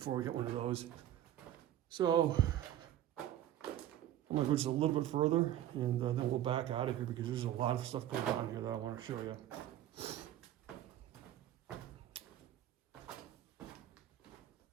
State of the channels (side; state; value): left; quieter; 12.2 dB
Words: we get one of those. So I'm gonna go just a little bit further and then we'll back out of here because there's a lot of stuff going on here that I wanna show you.